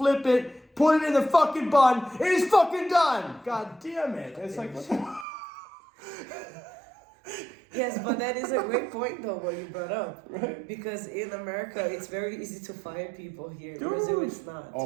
it, put it in the fucking bun. It is fucking done. God damn it! It's like. What the Yes, but that is a great point though what you brought up. Right. Because in America it's very easy to fire people here. Dude. In Brazil it's not.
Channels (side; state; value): left; drops out; at 5.2 s